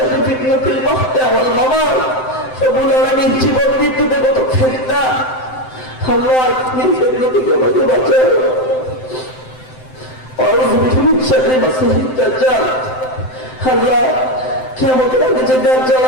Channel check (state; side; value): late; right; 7.8 ms